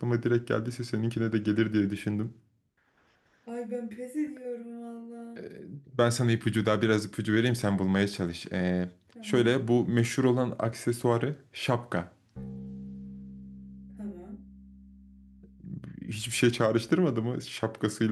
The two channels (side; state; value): both; identical; correlation 1.00